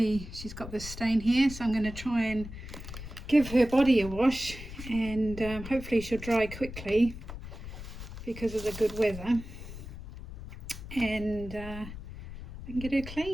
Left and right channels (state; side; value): noise; left; rumble, 11 dB below the sound